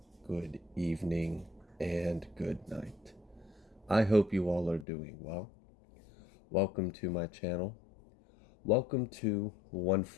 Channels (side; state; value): right; drops out; at 4.9 s